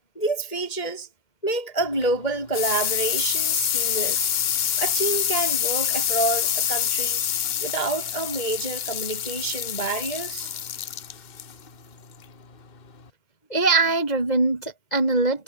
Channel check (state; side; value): late; right; 2.1 ms